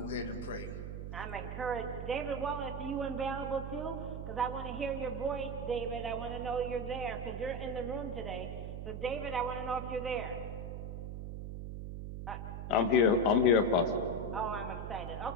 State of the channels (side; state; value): right; noise; hum, 6 dB below the sound